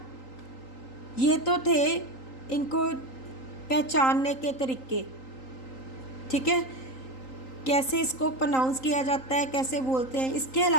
ये तो थे इनको पहचानने के तरीके, ठीक है, कैसे इसको प्रोनाउंस किया जाता है, कैसे बोलते हैं. इसके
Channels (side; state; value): right; late; 3.8 ms